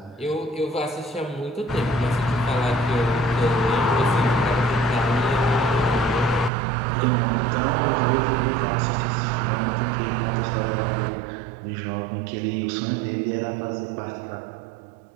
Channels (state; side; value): drops out; left; at 6.5 s